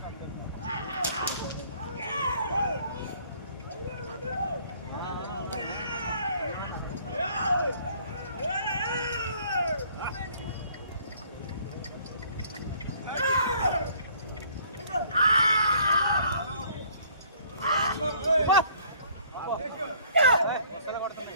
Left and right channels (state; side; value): inverted; both; correlation -0.58